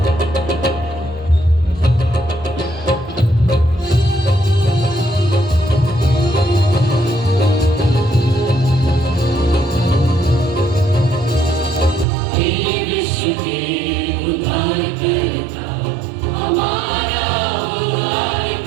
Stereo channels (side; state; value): left; drops out; at 12.1 s